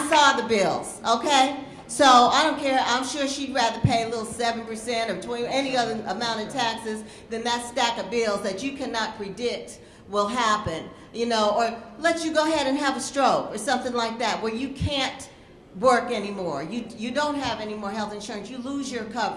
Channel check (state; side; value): identical; both; correlation 1.00